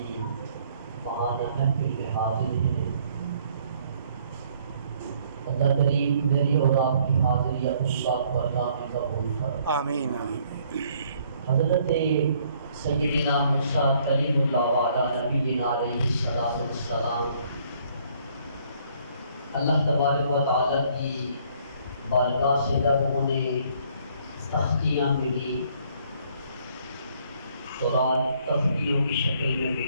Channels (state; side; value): inverted; both; correlation -0.63